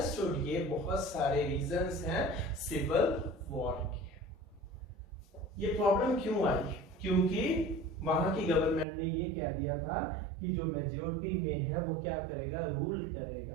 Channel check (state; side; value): drops out; left; at 8.8 s